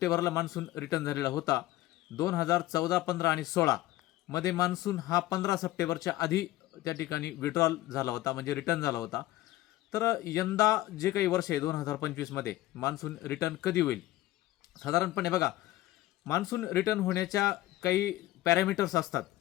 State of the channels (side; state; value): right; quieter; 16.2 dB